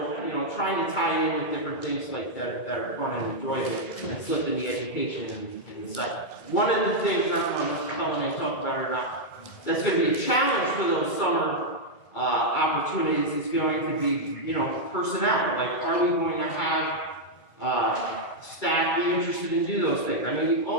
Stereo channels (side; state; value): right; late; 2.1 ms